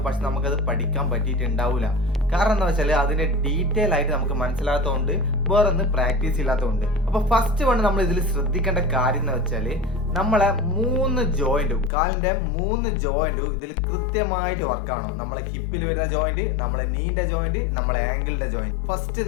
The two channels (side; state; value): right; drops out; at 11.9 s